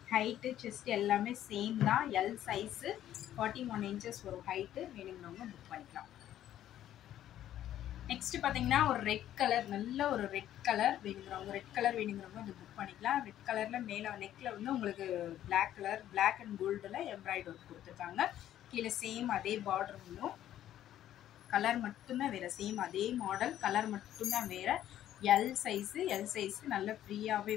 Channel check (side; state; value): right; quieter; 11.9 dB